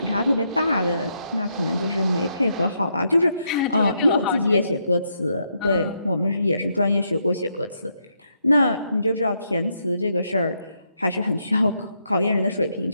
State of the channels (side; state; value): both; inverted; correlation -0.78